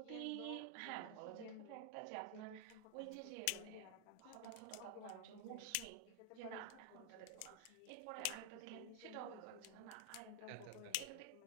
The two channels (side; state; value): both; different; correlation 0.00